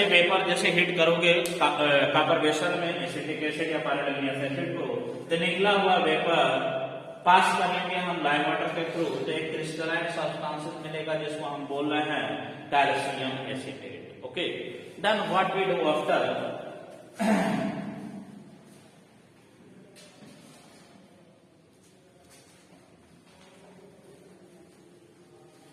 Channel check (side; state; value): both; identical; correlation 1.00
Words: वेपर जैसे हीट करोगे कॉपर वेसल में एसिटिक एसिड या पायरोलिग्नियस एसिड को, तो निकला हुआ वेपर पास करेंगे हम लाइम वाटर के थ्रू, तो एक क्रिस्टलाइन सब्सटेंस मिलेगा जिसको हम बोल रहे हैं calcium acetate. Okay, then what we do after,